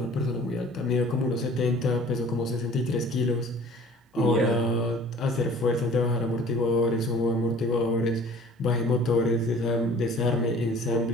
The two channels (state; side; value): normal; both; correlation 0.49